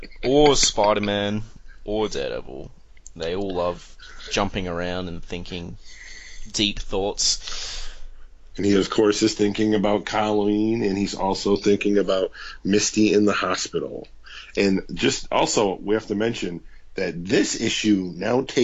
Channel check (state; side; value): identical; both; correlation 1.00